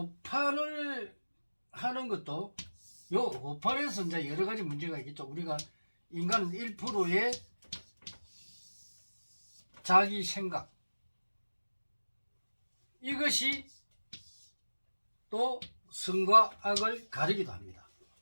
하는 것도 요 오판에서 이제 여러 가지 문제가 있겠죠. 우리가 인간은 1%의 자기 생각, 이것이 또 선과 악을 가리기도 합니다.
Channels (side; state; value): both; inverted; correlation -1.00